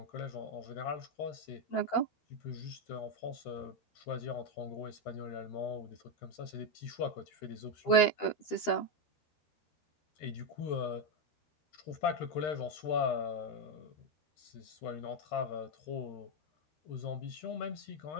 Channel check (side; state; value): right; late; 12 ms